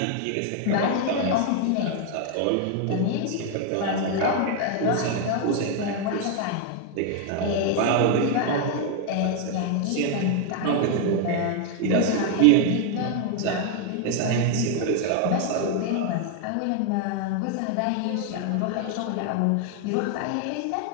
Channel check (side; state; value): both; different; correlation 0.01